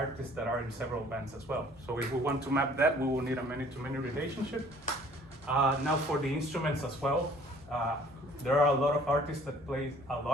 that are in several bands as well. So if we want to map that, we will need a many-to-many relationship. Now for the instruments as well, there are a lot of artists that play a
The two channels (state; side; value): normal; both; correlation 0.54